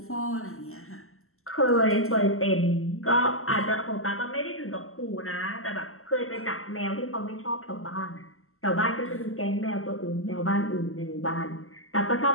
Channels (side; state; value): right; late; 0.62 ms